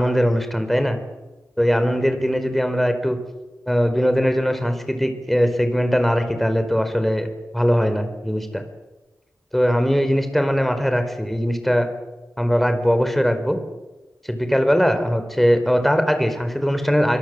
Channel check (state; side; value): normal; both; correlation 0.98